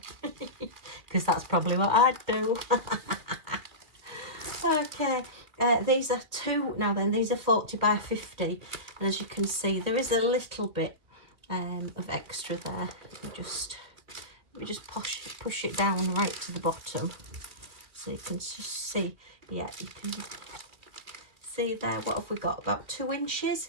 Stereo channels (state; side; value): late; left; 2.1 ms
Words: because that's probably what I'd do. Okay, these are two, now then, these are 40 by 50, and as you can see, there is a little bit of extra there. Let me just push it down right to the bottom, so you can just see. Yeah, you can see there. What have we got? About 2